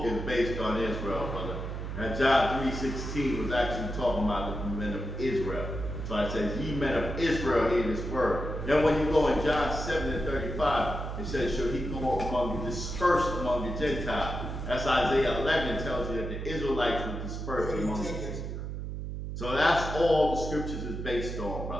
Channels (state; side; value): noise; right; hum, 5 dB below the sound